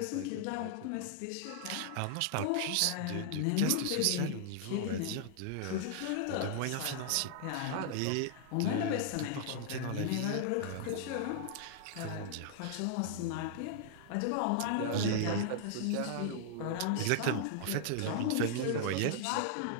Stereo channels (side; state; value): both; different; correlation -0.01